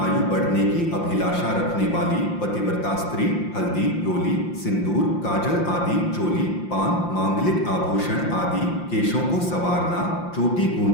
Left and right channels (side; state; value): right; late; 5.7 ms